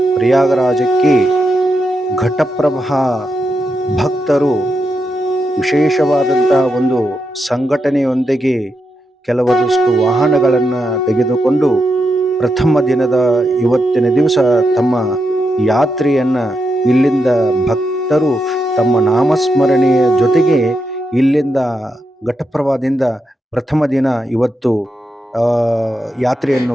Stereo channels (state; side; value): normal; both; correlation 0.84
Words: ಪ್ರಯಾಗರಾಜಕ್ಕೆ ಘಟಪ್ರಭಾ ಭಕ್ತರು ವಿಶೇಷವಾದಂಥ ಒಂದು ಸಂಘಟನೆಯೊಂದಿಗೆ ಕೆಲವೊಂದಷ್ಟು ವಾಹನಗಳನ್ನು ತೆಗೆದುಕೊಂಡು ಪ್ರಥಮ ದಿನದ ಇವತ್ತಿನ ದಿವಸ ತಮ್ಮ ಯಾತ್ರೆಯನ್ನು ಇಲ್ಲಿಂದ ಭಕ್ತರು ತಮ್ಮ ನಾಮಸ್ಮರಣೆಯ ಜೊತೆಗೆ ಇಲ್ಲಿಂದ ಘಟಪ್ರಭಾದಿಂದ ಪ್ರಥಮ ದಿನ ಇವತ್ತು ಯಾತ್ರೆಯನ್ನು